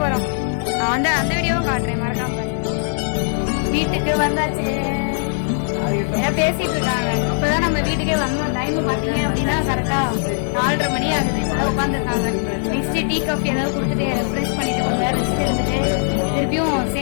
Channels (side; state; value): right; silent; 66 dB below the other